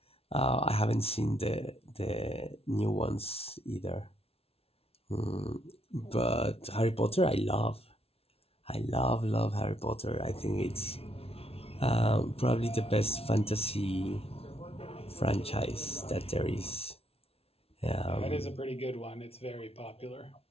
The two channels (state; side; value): late; right; 0.29 ms